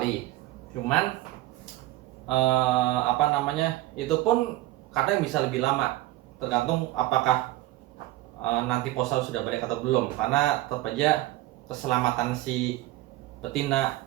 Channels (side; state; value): left; quieter; 16.6 dB